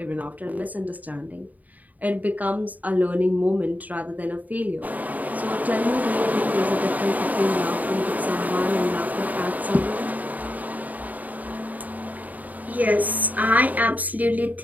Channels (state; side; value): late; left; 0.077 ms